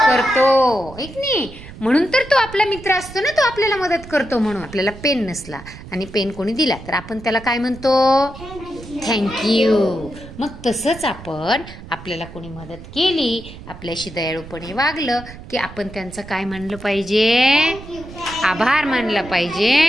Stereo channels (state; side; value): noise; right; rumble, 15 dB below the sound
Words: करतो, ऐक नाही. म्हणून तर तो आपला मित्र असतो ना, तो आपल्याला मदत करतो. म्हणून आपल्याला पेन नसला आणि पेन कोणी दिला तर आपण त्याला काय म्हणतो? थँक्यू. मग तसंच आपल्याला कोणी मदत केली, आपल्याशी दयाळूपणे वागलं की आपण त्यांचं काय म्हणलं पाहिजे? आभार मानला